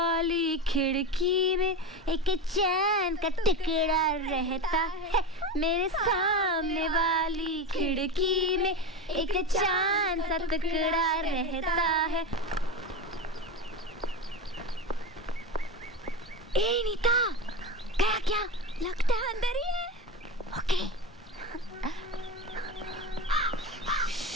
खिड़की में एक चैन का टुकड़ा रहता है। मेरे सामने वाली खिड़की में एक चांद सा टुकड़ा रहता है। ए नीता, गया क्या? लगता है अंदर ही है। ओके।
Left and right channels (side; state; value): both; normal; correlation 0.21